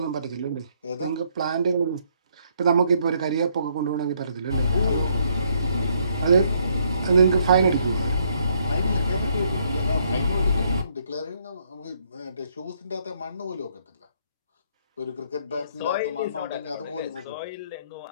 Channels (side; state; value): both; inverted; correlation -0.69